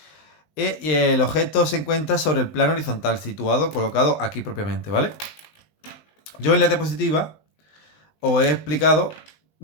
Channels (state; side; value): late; right; 20 ms